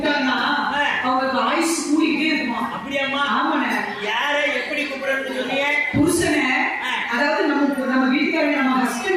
அவங்களுக்கு ஆயுசு கூடிக்கிட்டே இருக்குமா அப்படியாம்மா ஆமாண்ணே யாரை எப்படி கூப்பிடணும்னு சொன்னீங்க புருஷனை அதாவது நம்ம வீட்டுக்காரர் நம்ம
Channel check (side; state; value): both; identical; correlation 1.00